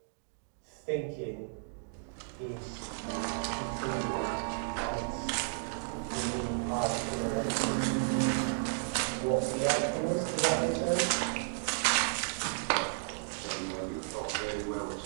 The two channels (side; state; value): left; silent; digital silence